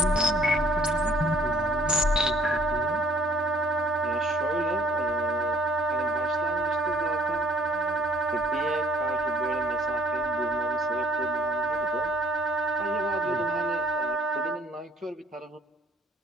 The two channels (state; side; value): normal; both; correlation 0.59